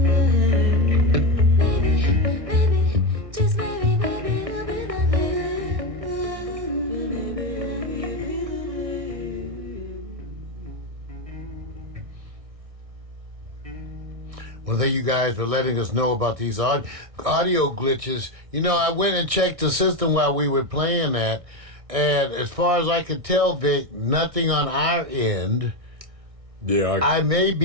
Well, thank you guys for letting us know about these audio glitches. You know, I went and checked the system while we were playing that, and as far as I could tell, Vic, nothing on our end. Yeah, I may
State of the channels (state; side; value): late; left; 1.6 ms